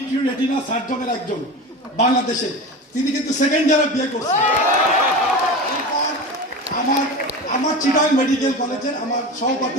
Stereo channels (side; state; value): both; normal; correlation 0.28